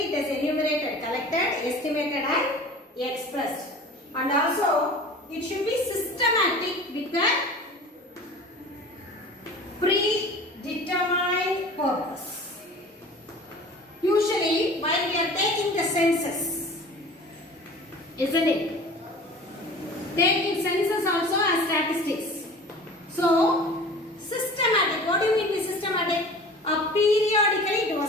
it is enumerated, collected, estimated and expressed. And also, it should be systematic with the predetermined purpose. Usually, while we are taking the census, isn't it? Taking census also as statistics. So, systematic. What do you mean by systematic? Periodically it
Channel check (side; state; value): both; normal; correlation 0.41